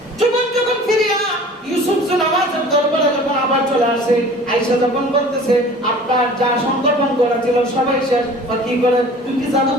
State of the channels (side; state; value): both; normal; correlation 0.45